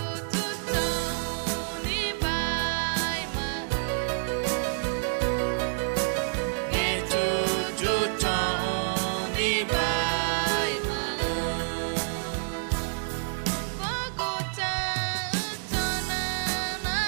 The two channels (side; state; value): left; silent; 59 dB below the other